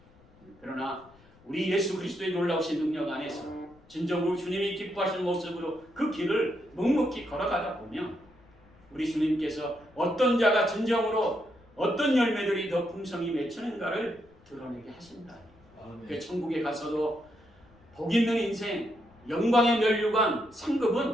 그러나 우리 예수 그리스도의 놀라우신 능력 안에서 진정으로 주님이 기뻐하시는 모습으로 그 길을 묵묵히 걸어가다 보면 우리 주님께서 어떤 자가 진정으로 어떤 열매들이 더 풍성히 맺히는가를 드러내게 하신다. 그 천국에 가서도 복 있는 인생, 영광의 면류관,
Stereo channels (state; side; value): noise; left; rumble, 28 dB below the sound